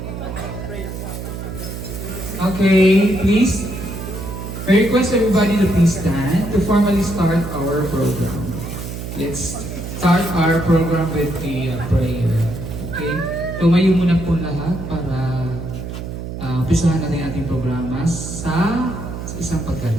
Okay, please. I request everybody to please stand to formally start our program. Let's start our program with a prayer. Okay? Tumayo muna po lahat para umpisahan natin ang ating programa sa isang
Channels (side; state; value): right; noise; hum, 7 dB below the sound